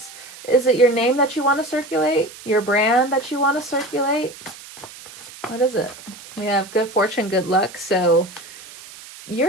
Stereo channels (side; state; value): right; noise; hiss, 17 dB below the sound